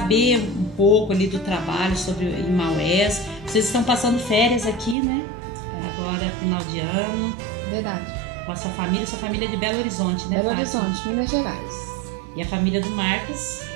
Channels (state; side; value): drops out; left; at 5.0 s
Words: um pouco ali do trabalho sobre em Maués. Vocês estão passando férias aqui, né? Agora, final de ano. Verdade. Com a sua família é de Belo Horizonte, né, Belo Fátima? Horizonte, Minas Gerais. E a família do Marcos?